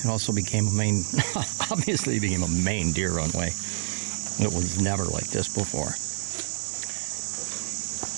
became a main, obviously became a main deer runway. It was never like this before.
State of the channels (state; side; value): silent; left; digital silence